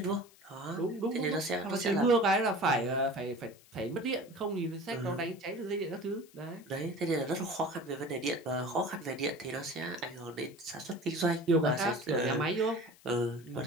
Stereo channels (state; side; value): noise; left; hiss, 26 dB below the sound